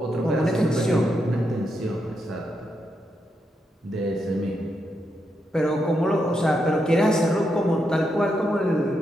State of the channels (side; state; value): both; normal; correlation 0.83